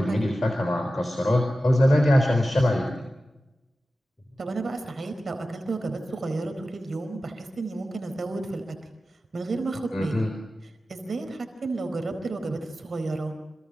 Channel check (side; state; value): both; normal; correlation 0.94